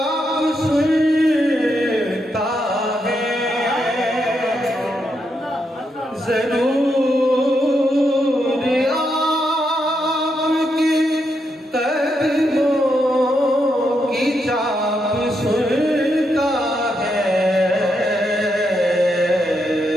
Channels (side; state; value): both; normal; correlation 0.81